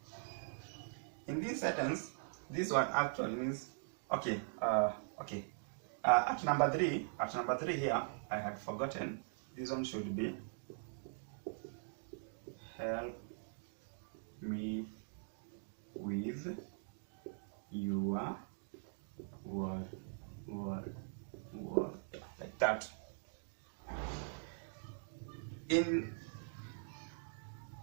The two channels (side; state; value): left; silent; digital silence